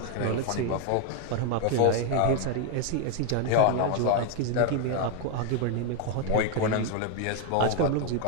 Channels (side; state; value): both; different; correlation 0.01